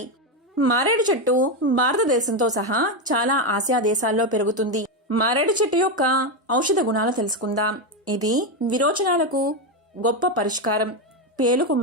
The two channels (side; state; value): both; normal; correlation 0.09